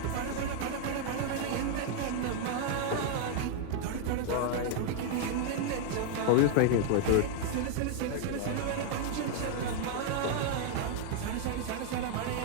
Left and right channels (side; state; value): both; different; correlation 0.00